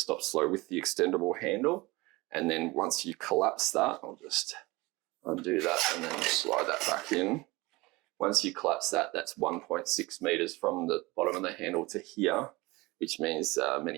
slow with the extendable handle. And then once you collapse that, I'll just undo that and then slide that back in. Once you collapse that, that's 1.6 meters from the bottom of the handle to here, which means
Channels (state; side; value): quieter; left; 22.4 dB